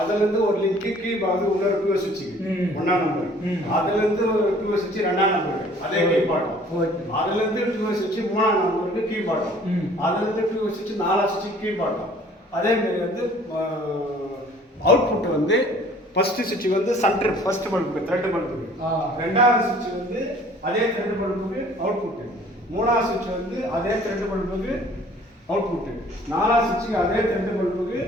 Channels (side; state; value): both; normal; correlation 0.53